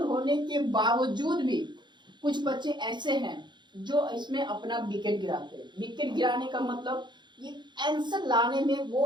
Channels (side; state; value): left; late; 0.22 ms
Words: होने के बावजूद भी कुछ बच्चे ऐसे हैं जो इसमें अपना विकेट गिराते हैं। विकेट गिराने का मतलब ये आंसर लाने में वो